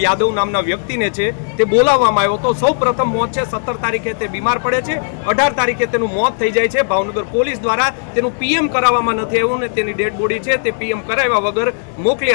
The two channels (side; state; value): right; silent; 69 dB below the other